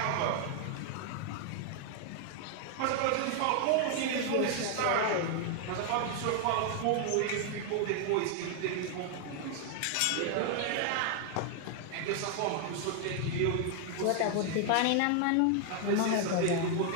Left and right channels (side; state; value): both; different; correlation 0.00